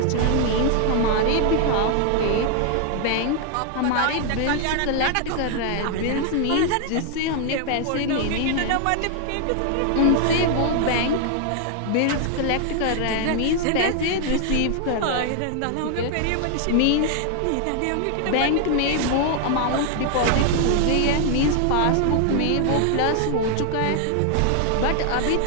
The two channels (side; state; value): both; different; correlation 0.00